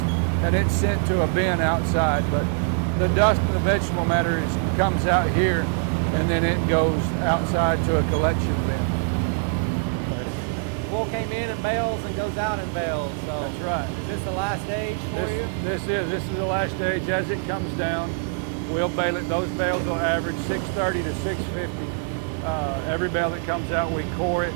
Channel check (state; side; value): quieter; left; 38.3 dB